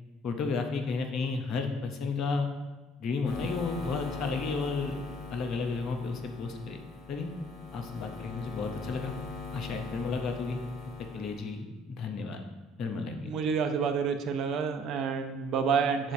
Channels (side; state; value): both; normal; correlation 0.59